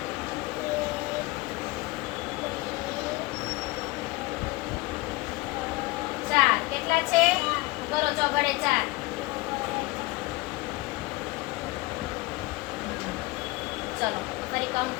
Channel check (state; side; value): quieter; right; 21.8 dB